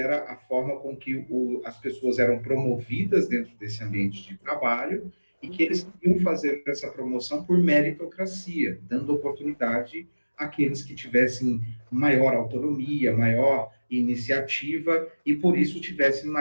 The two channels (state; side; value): inverted; both; correlation -1.00